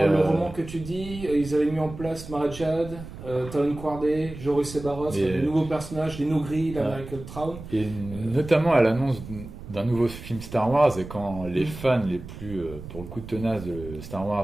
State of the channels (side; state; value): right; noise; rumble, 13 dB below the sound